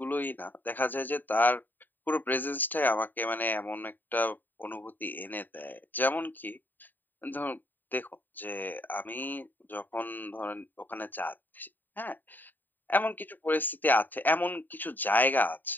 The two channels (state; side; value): late; right; 0.090 ms